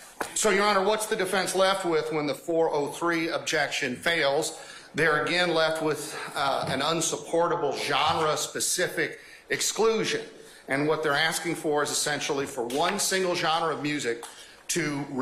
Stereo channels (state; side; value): identical; both; correlation 1.00